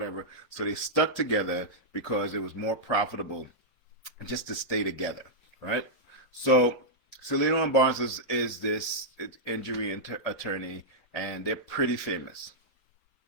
So they stuck together because it was more profitable just to stay together, right? So Salino and Barnes is this injury attorney, and they're pretty famous.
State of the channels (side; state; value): left; late; 6.0 ms